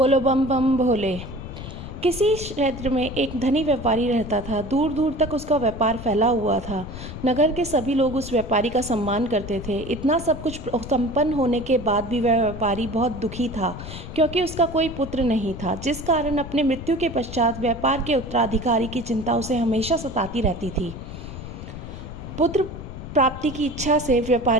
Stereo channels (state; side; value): noise; left; rumble, 11 dB below the sound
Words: बम बम भोले। किसी क्षेत्र में एक धनी व्यापारी रहता था। दूर दूर तक उसका व्यापार फैला हुआ था। नगर के सभी लोग उस व्यापारी का सम्मान करते थे। इतना सब कुछ संपन्न होने के बाद भी वह व्यापारी बहुत दुखी था, क्योंकि उसका कोई पुत्र नहीं था, जिस कारण अपने मृत्यु के पश्चात व्यापार के उत्तराधिकारी की चिंता उसे हमेशा सताती रहती थी। पुत्र प्राप्ति की इच्छा से